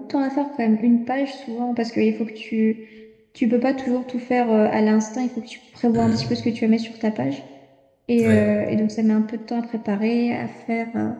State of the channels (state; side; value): identical; both; correlation 1.00